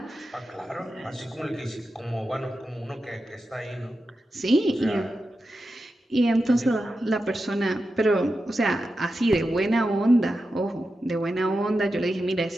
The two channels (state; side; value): normal; both; correlation 0.90